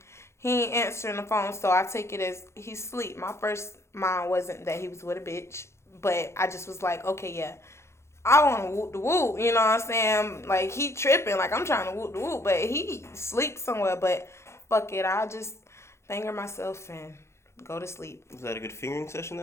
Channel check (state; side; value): late; right; 0.13 ms